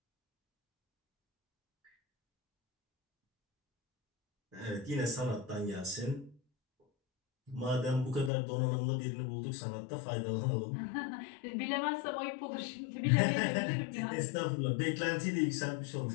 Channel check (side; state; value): right; drops out; at 8.3 s